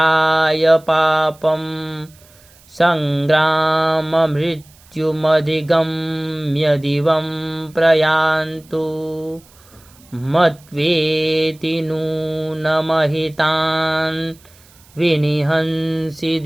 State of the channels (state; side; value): noise; right; hiss, 27 dB below the sound